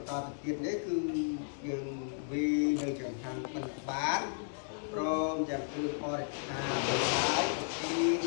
្តទៅទៀតនេះគឺយើងវានៅចង្ហាន់មិនបានព្រមទាំងគ្រឿងបរិក្ខារហើយទីទ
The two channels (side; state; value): right; silent; digital silence